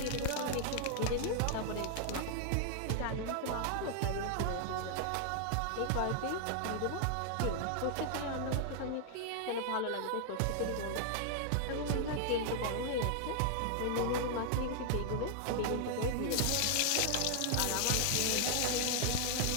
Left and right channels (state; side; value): different; both; correlation 0.00